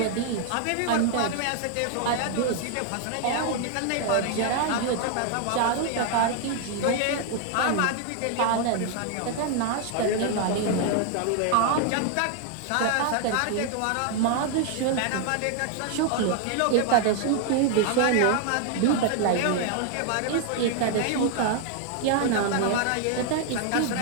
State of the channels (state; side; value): different; both; correlation 0.00